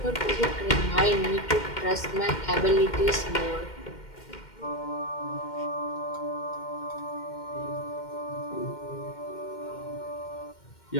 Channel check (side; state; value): right; late; 2.1 ms